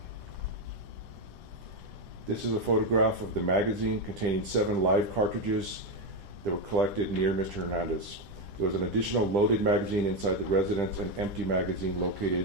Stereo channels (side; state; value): left; late; 9.9 ms